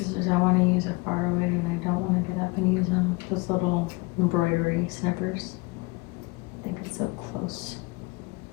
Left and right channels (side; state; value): right; quieter; 25.4 dB